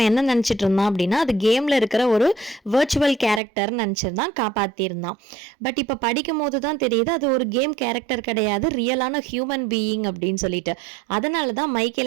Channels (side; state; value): left; drops out; at 3.4 s